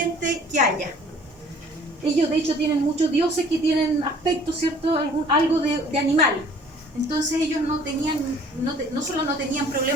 que haya. Ellos de hecho tienen muchos dioses que tienen aspecto, ¿cierto? Algo de animal. Entonces ellos no solo no tenían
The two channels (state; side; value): normal; both; correlation 0.53